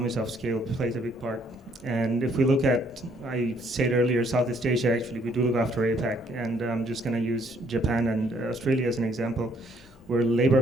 of scale plays a big part. And if we look at, I said earlier, Southeast Asia, actually, we do look after APAC, and I'm just going to use Japan and Australia as an example, where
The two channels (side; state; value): both; normal; correlation 0.66